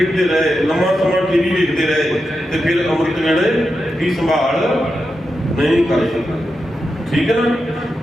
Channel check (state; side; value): normal; both; correlation 0.88